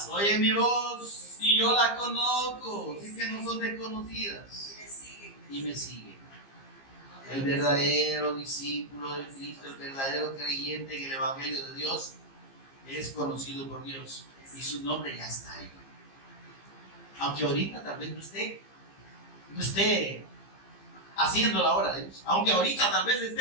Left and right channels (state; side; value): late; right; 15 ms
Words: oyen mi voz y yo la conozco. Así que no son desconocidas. Y me siguen. El verdadero discípulo de Cristo, el verdadero creyente en el Evangelio de Dios, es conocido por Dios. Y su nombre ya está ahí. Aunque ahorita tal vez no esté haciendo la obra de Dios. Aunque ahorita tal vez